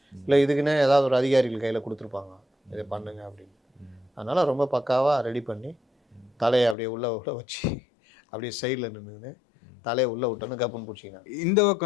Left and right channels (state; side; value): drops out; right; at 6.8 s